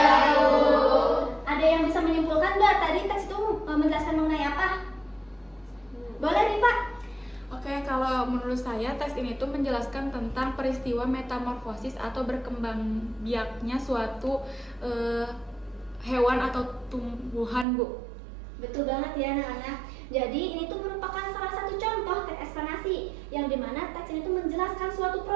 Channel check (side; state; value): left; drops out; at 17.7 s